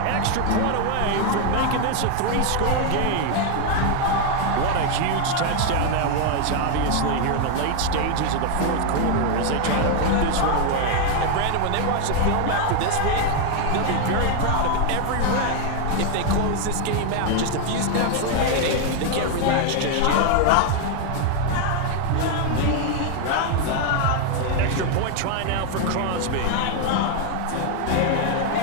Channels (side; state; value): both; different; correlation 0.01